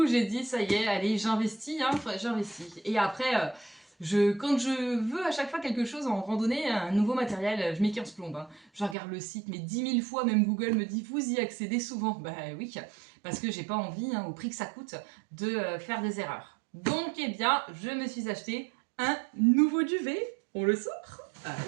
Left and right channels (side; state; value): left; drops out; at 9.0 s